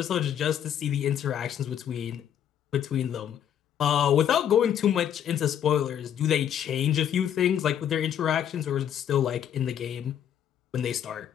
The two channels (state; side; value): quieter; right; 9.6 dB